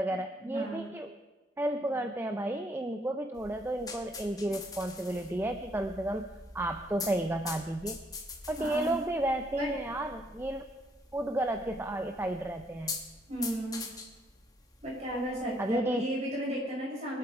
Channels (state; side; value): normal; both; correlation 0.69